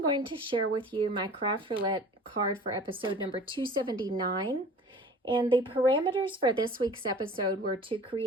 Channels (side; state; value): both; normal; correlation 0.44